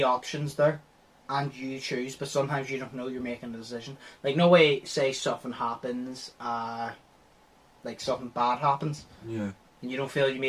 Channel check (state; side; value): identical; both; correlation 1.00